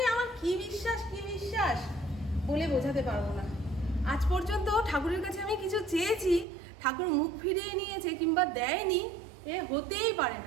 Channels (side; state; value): left; drops out; at 6.5 s